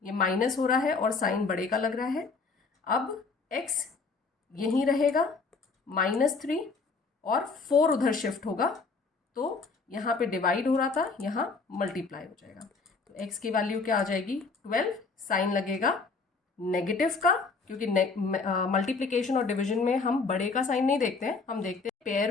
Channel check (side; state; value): right; quieter; 4.4 dB